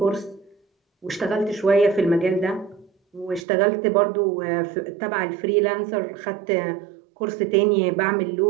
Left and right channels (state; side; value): drops out; left; at 3.5 s